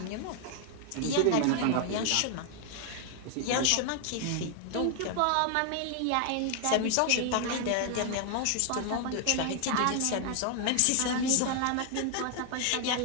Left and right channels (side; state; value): both; different; correlation 0.00